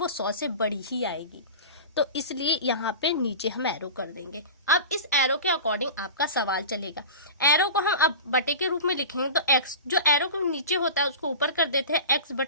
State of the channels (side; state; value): both; inverted; correlation -0.32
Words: 100 से बड़ी ही आएगी, तो इसलिए यहाँ पे नीचे हम एरो कर देंगे। अब इस एरो के अकॉर्डिंग आपका सवाल चलेगा। एरो को हम अब बटे के रूप में लिखेंगे, तो x जो एरो को नीचे होता है उसको ऊपर कर देते हैं, x